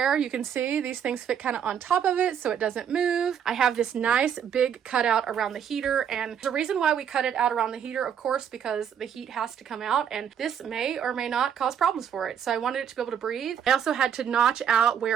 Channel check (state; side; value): quieter; left; 8.3 dB